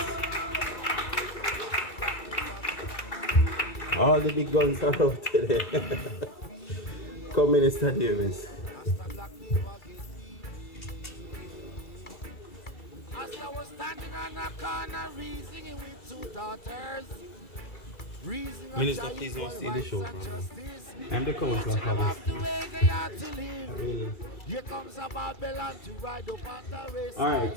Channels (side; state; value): right; late; 2.3 ms